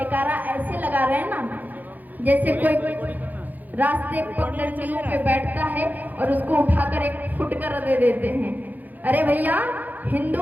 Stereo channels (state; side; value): late; left; 0.083 ms